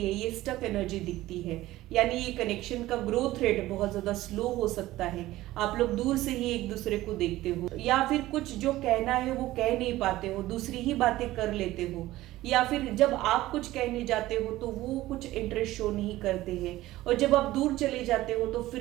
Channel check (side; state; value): left; quieter; 16.4 dB